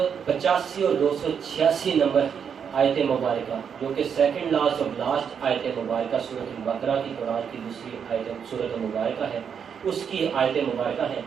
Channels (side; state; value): left; quieter; 7.3 dB